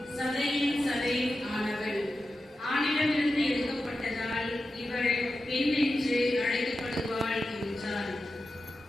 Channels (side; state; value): both; normal; correlation 0.91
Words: சதையின் சதையும் ஆனவள். ஆணிடமிருந்து எடுக்கப்பட்டதால் இவள் பெண் என்று அழைக்கப்படுவாள் என்றார்.